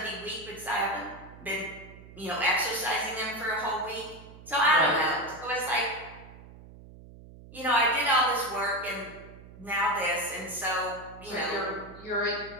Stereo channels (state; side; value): noise; right; hum, 18 dB below the sound